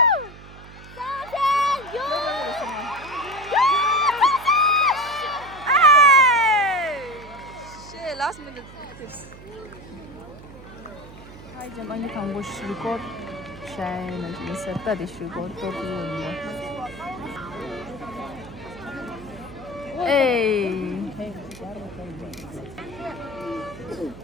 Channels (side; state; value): right; noise; hum, 17 dB below the sound